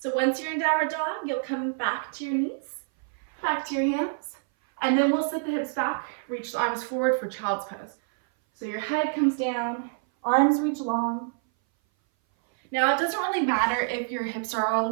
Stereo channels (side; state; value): left; silent; 58 dB below the other